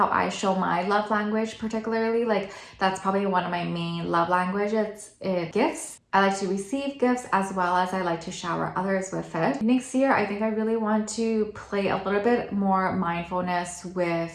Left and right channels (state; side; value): identical; both; correlation 1.00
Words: I show my love language, particularly. Like that's probably one of my main love languages, gifts. I like to receive gifts as well as I like to shower others with it. Next year, I think I really want to play a little bit more mindfulness